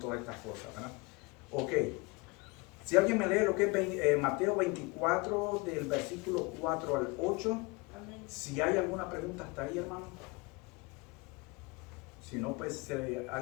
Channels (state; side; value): quieter; right; 26.2 dB